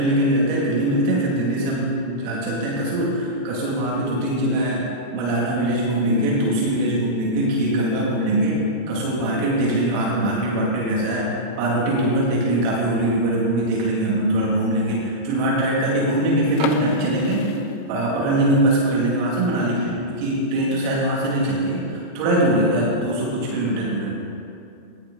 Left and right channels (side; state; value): left; late; 39 ms